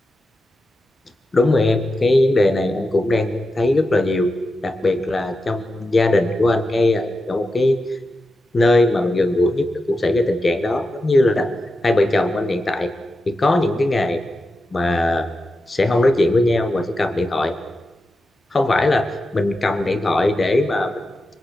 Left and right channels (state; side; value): normal; both; correlation 0.90